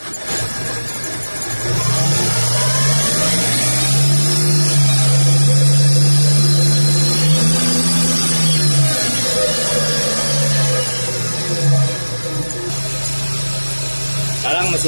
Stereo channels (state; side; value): inverted; both; correlation -1.00